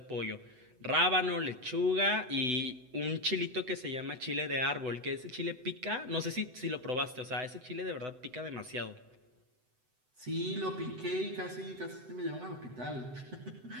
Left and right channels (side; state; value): left; late; 7.9 ms